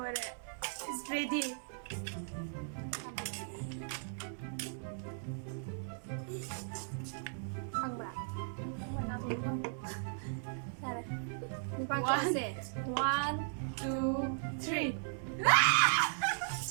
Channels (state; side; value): silent; left; digital silence